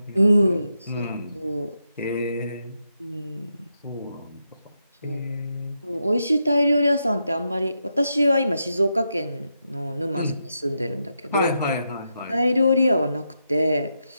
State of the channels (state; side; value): inverted; both; correlation -0.84